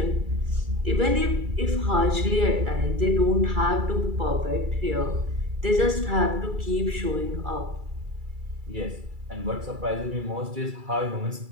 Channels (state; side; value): late; left; 2.3 ms